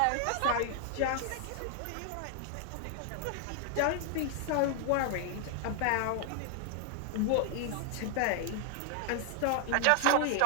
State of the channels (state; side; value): different; both; correlation 0.00